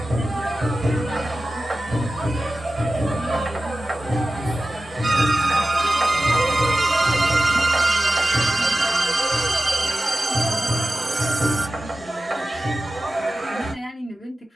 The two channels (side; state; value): both; normal; correlation 0.95